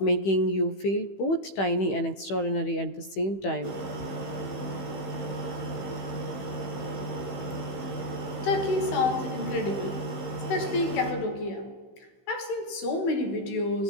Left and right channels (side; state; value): right; late; 15 ms